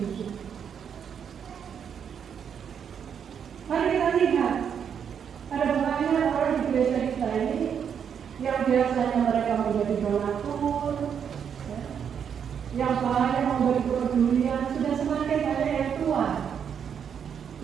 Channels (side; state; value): left; quieter; 7.7 dB